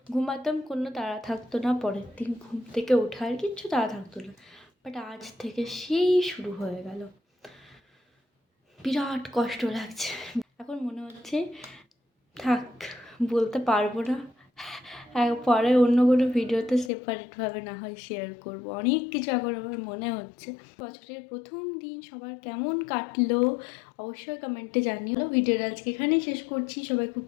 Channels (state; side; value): drops out; right; at 16.9 s